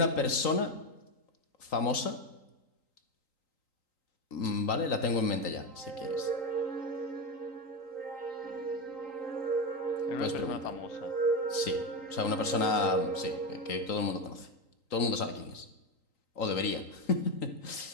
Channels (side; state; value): right; late; 3.9 ms